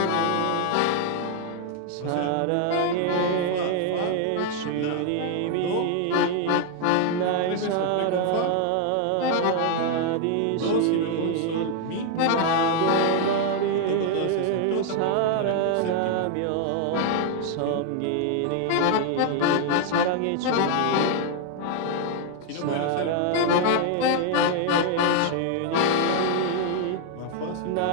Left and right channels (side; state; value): both; different; correlation 0.00